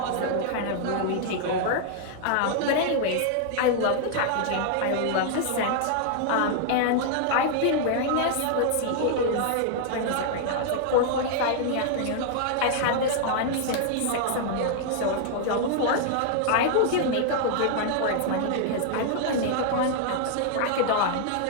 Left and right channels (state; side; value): different; both; correlation 0.00